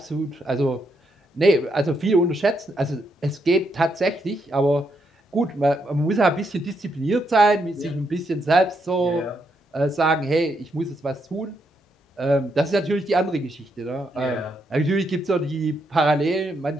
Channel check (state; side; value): normal; both; correlation 0.78